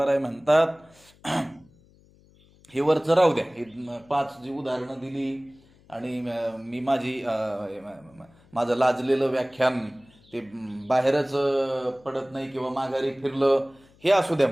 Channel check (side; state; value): left; noise; hum, 29 dB below the sound